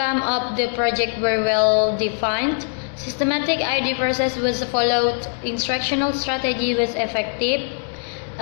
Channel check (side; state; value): right; silent; digital silence